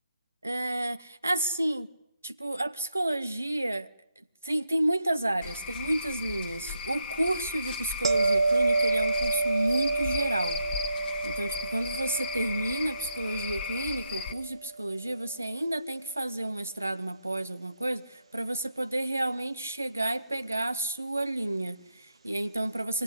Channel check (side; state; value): both; inverted; correlation -0.82